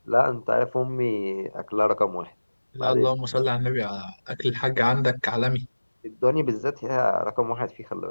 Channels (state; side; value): inverted; both; correlation -1.00